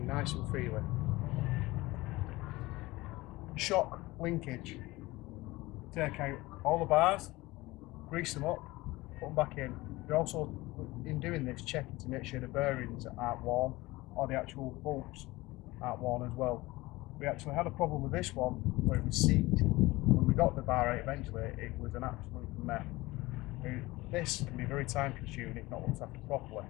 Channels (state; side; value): quieter; right; 20.3 dB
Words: nice and freely. shock linkage. Take out all the bars, grease them up, put them back in. You're also, in doing this, checking to make sure the bearings aren't worn or the actual bolts aren't worn as well. We actually had a problem with this one where it was seized. When we got the bar out eventually, it was an absolute mess. This can be very time consuming if not looked after properly.